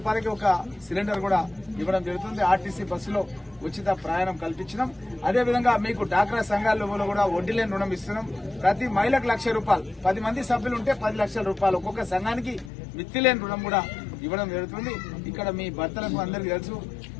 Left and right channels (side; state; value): right; drops out; at 12.7 s